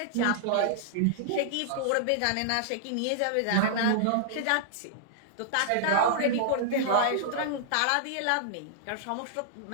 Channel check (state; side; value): different; both; correlation -0.01